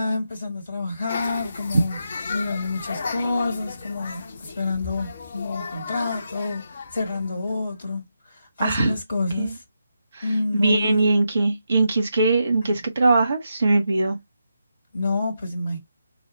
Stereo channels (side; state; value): both; inverted; correlation -0.85